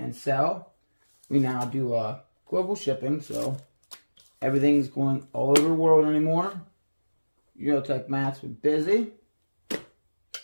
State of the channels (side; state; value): both; inverted; correlation -1.00